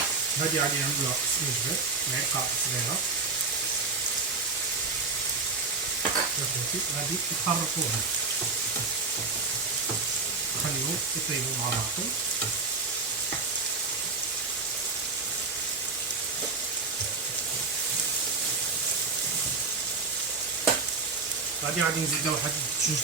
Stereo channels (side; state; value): left; quieter; 4.2 dB